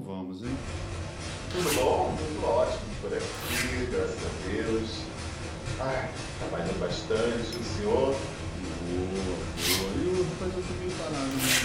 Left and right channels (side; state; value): both; identical; correlation 1.00